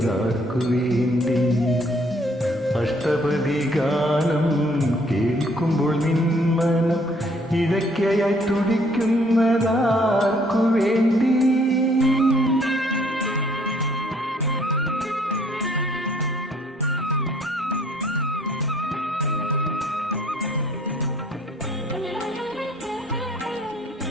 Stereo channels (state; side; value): normal; both; correlation 0.62